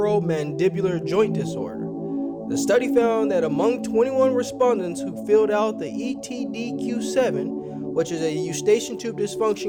joint disorder. The study found that among 21 respondents who filled out the ETDQ7, which is a Eustachian Tube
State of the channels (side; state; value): both; identical; correlation 1.00